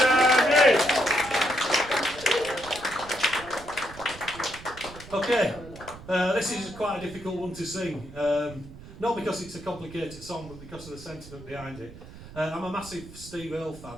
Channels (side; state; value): right; noise; rumble, 16 dB below the sound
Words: this is quite a difficult one to sing. Not because it's a complicated song, but because of the sentiment behind it. I'm a massive Steve Earle